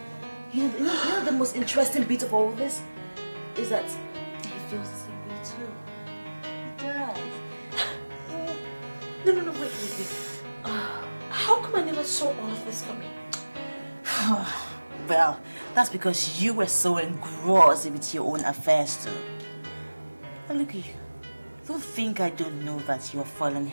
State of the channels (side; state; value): both; inverted; correlation -1.00